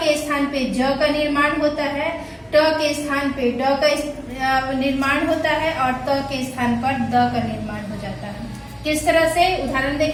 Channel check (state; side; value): identical; both; correlation 1.00